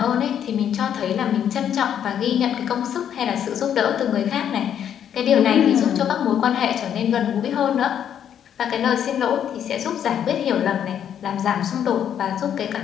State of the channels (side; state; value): right; quieter; 9.3 dB